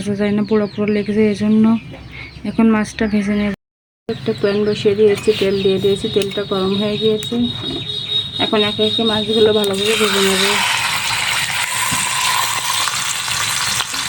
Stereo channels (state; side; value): identical; both; correlation 1.00